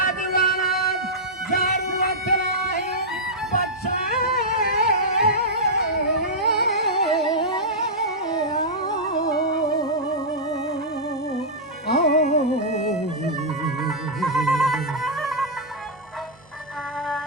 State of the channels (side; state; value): both; normal; correlation -0.09